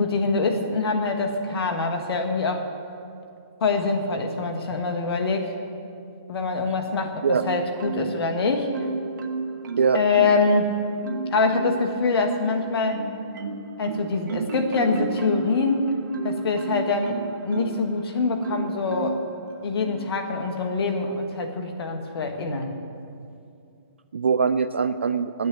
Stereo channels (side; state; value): both; inverted; correlation -0.49